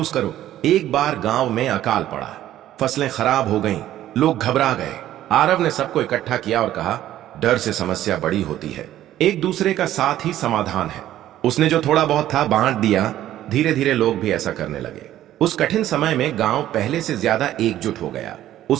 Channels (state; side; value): quieter; left; 12.9 dB